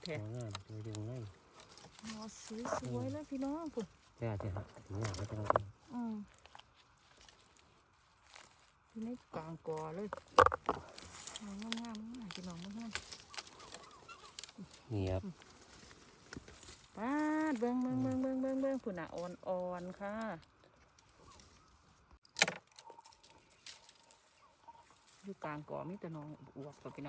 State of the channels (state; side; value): identical; both; correlation 1.00